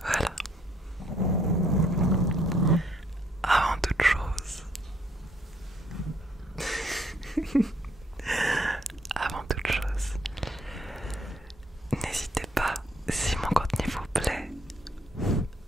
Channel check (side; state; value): both; normal; correlation 0.68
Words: Voilà. Avant toute chose... Avant toute chose... N'hésitez pas, si mon contenu vous plaît...